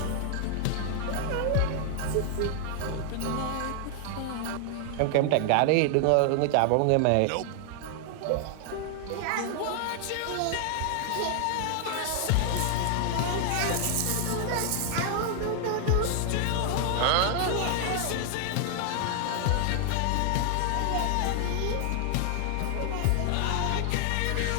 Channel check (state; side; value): different; both; correlation 0.00